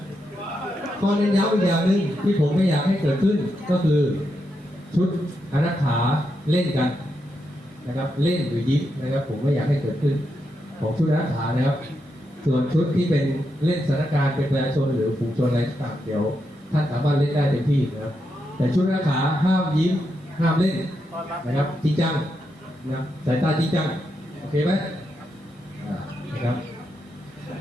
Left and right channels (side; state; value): both; normal; correlation 0.84